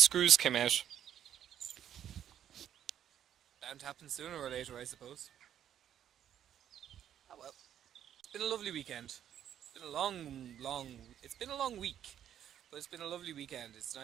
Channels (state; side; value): quieter; left; 10.1 dB